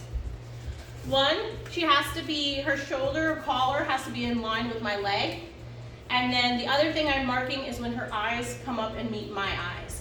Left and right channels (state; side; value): identical; both; correlation 1.00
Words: One, her shoulder or collar has to be in line with my leg. And then the other thing I'm marking is when her eyes come up and meet my